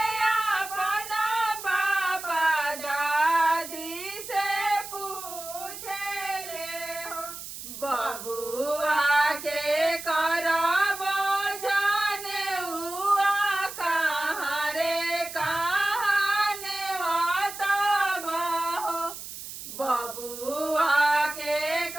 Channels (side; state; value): right; noise; hiss, 11 dB below the sound